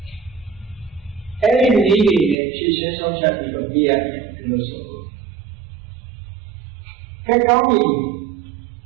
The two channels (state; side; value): drops out; left; at 2.4 s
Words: အဲ့ဒီနည်းတွေနဲ့ဖြည့်ရှင်းဆုံးဖြတ်ပြီးတော့ပြရတယ်လို့ဆိုလို့ကဲကောင်းပြီ